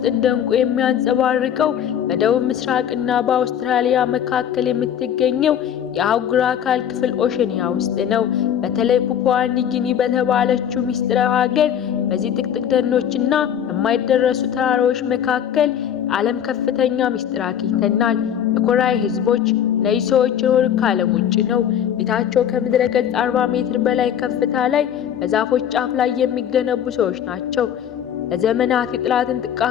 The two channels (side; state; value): right; quieter; 9.4 dB